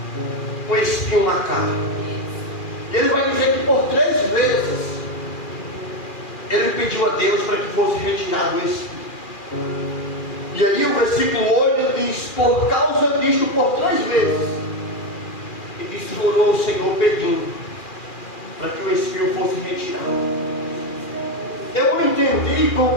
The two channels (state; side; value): late; right; 2.4 ms